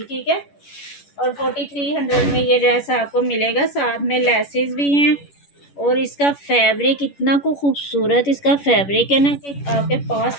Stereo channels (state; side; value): late; right; 11 ms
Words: ठीक है, और 4300 में ये ड्रेस आपको मिलेगा, साथ में लेसेस भी हैं, और इसका फैब्रिक इतना को खूबसूरत इसका फैब्रिक है ना कि आपके पास